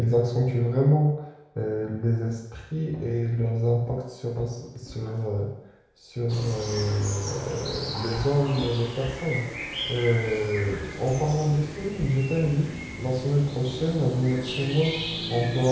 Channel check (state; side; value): identical; both; correlation 1.00